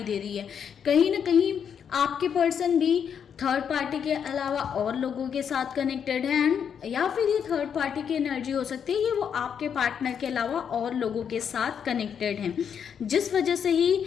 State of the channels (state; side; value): quieter; right; 7.7 dB